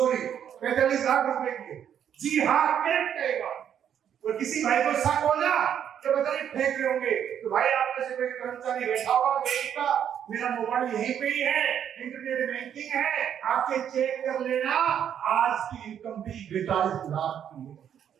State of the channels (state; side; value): quieter; left; 9.1 dB